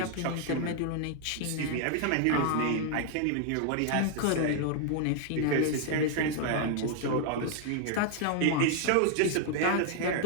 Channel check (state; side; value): different; both; correlation 0.00